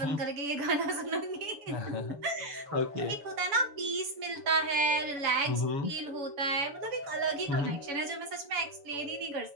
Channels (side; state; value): left; late; 7.0 ms